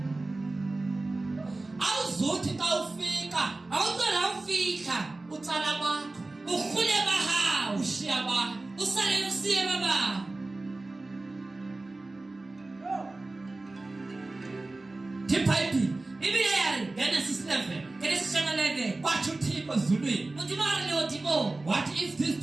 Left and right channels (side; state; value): left; quieter; 3.1 dB